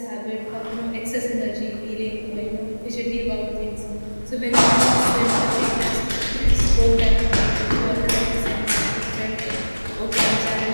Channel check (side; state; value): both; inverted; correlation -1.00